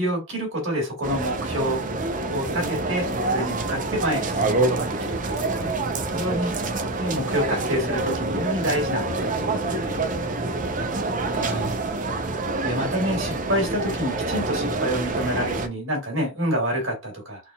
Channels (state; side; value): normal; both; correlation 0.14